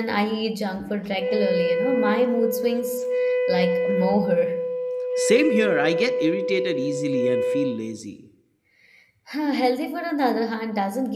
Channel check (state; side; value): identical; both; correlation 1.00